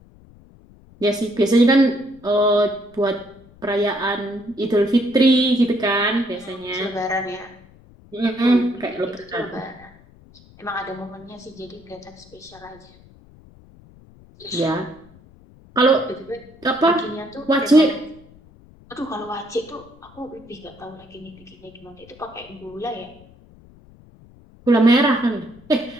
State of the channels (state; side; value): noise; left; rumble, 25 dB below the sound